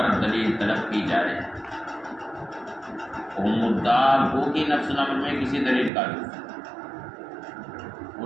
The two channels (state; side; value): drops out; left; at 5.9 s